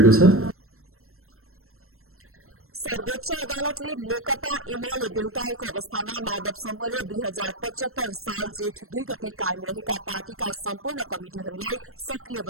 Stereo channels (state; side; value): late; left; 0.62 ms